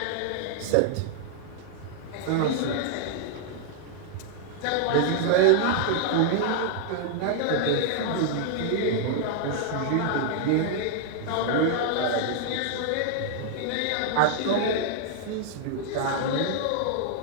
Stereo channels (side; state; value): both; different; correlation -0.01